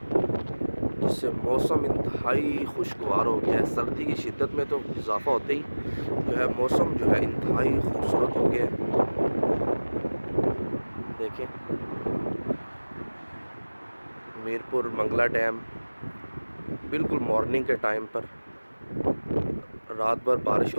जिससे मौसम इंतहाई खुशगवार हो गया है। सर्दी की शिद्दत में तो इजाफ़ा होते ही जो है मौसम जो है इंतहाई खूबसूरत हो गया है। देखें, मीरपुर मंगला डैम बिल्कुल मॉर्निंग के टाइम पर रात भर बारिश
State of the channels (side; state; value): both; inverted; correlation -1.00